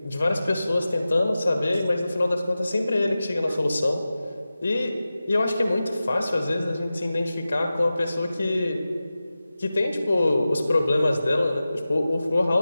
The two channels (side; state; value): both; inverted; correlation -0.95